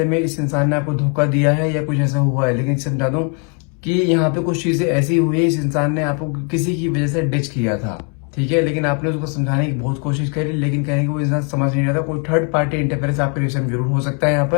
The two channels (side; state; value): right; quieter; 38.5 dB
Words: में इस इंसान ने आपको धोखा दिया है या कुछ ऐसा हुआ है, लेकिन समझा दूं कि यहाँ पे कुछ चीजें ऐसी हुई है, इस इंसान ने आपको किसी की वजह से डिच किया था। ठीक है, लेकिन आपने उसको समझाने की बहुत कोशिश करी, लेकिन कहने की वो इंसान समझ नहीं रहा था। कोई थर्ड पार्टी इंटरफेरेंस आपके रिश्ते में जरूर हो सकता है यहाँ